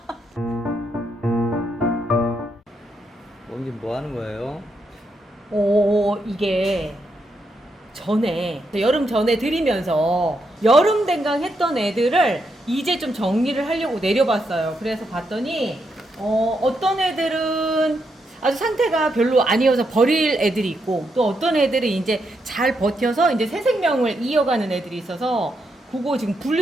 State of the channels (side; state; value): both; normal; correlation 0.81